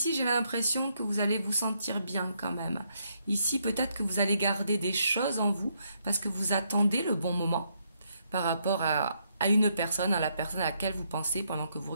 j'ai l'impression que vous allez vous sentir bien quand même. Ici, peut-être que vous allez garder des choses en vous parce que vous attendez le bon moment par rapport à une personne, à la personne à laquelle vous pensez pendant que vous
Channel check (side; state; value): both; inverted; correlation -0.75